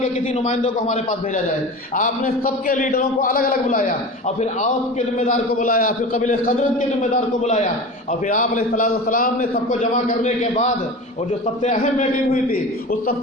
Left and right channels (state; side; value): normal; both; correlation 0.32